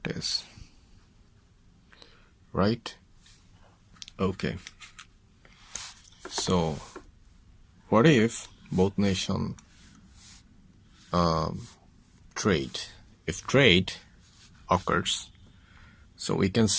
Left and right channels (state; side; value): identical; both; correlation 1.00